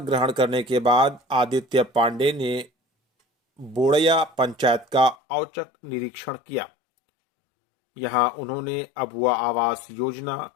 करने के बाद आदित्य पांडे ने बोड़या पंचायत का औचक निरीक्षण किया। यहां उन्होंने अबुआ आवास योजना,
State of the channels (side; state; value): right; drops out; at 5.2 s